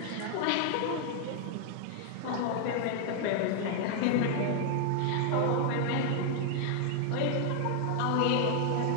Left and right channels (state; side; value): different; both; correlation 0.00